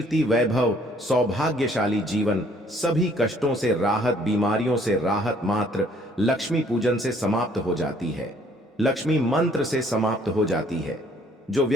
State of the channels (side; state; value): both; normal; correlation 0.61